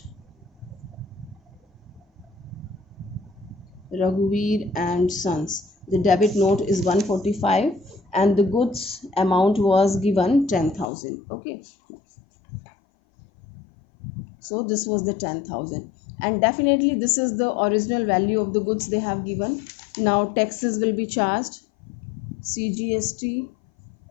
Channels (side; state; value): right; drops out; at 10.9 s